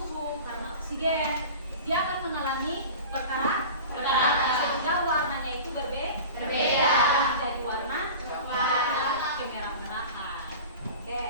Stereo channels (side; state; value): both; inverted; correlation -0.35